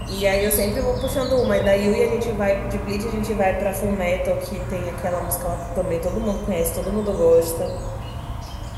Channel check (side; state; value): both; identical; correlation 1.00